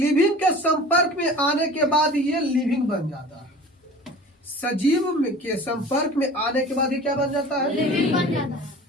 के संपर्क में आने के बाद ये लिविंग बन जाता है। सजीव के संपर्क में आने के बाद ये क्या बन जाता है? लिविंग बन जाता है।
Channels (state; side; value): normal; both; correlation 0.41